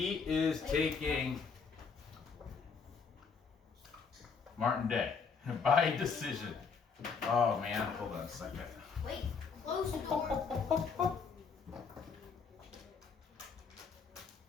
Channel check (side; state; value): right; quieter; 5.5 dB